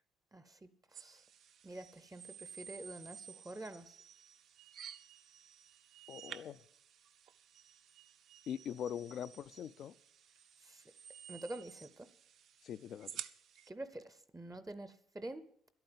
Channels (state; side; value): normal; both; correlation 0.71